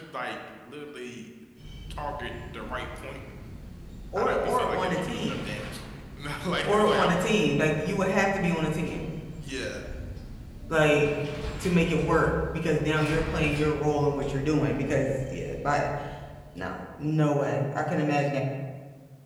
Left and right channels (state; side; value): identical; both; correlation 1.00